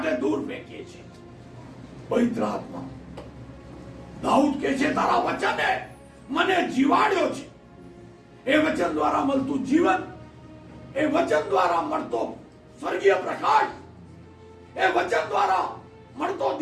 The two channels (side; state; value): both; identical; correlation 1.00